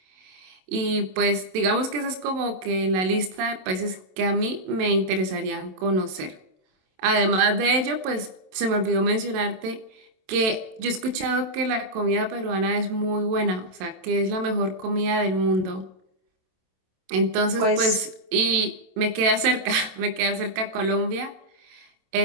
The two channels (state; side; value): late; left; 27 ms